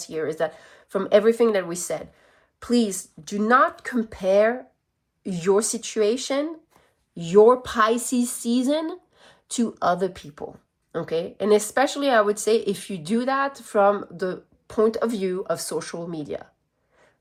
here is that from everything that we said, please do not compare your situation, your Pisces season, to other people. Okay, and especially I would say if you do that from the point of view of social media.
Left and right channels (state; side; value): identical; both; correlation 1.00